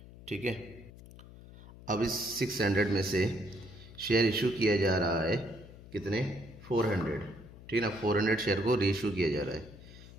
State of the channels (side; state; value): left; noise; hum, 18 dB below the sound